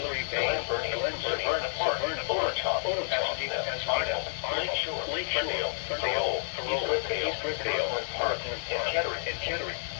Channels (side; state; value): right; silent; 58 dB below the other